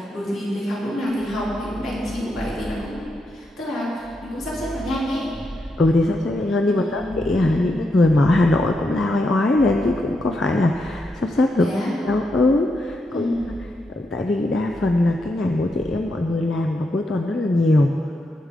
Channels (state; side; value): normal; both; correlation 0.83